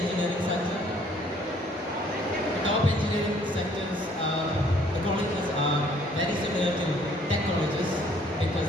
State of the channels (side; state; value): both; normal; correlation 0.61